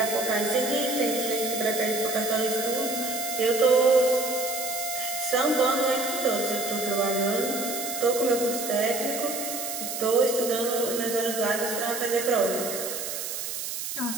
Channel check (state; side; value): noise; right; hiss, 5 dB below the sound